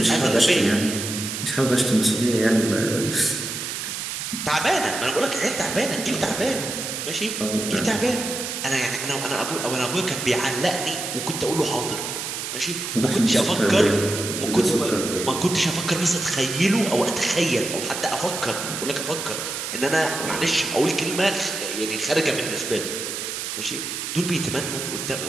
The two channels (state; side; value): noise; right; hiss, 5 dB below the sound